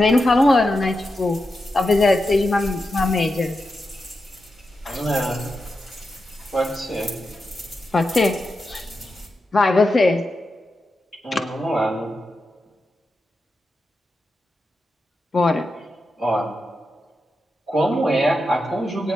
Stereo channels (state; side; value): normal; both; correlation 0.88